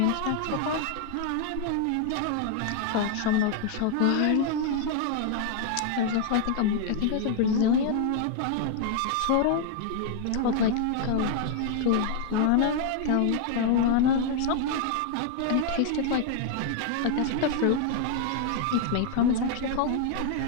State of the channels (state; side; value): different; both; correlation 0.00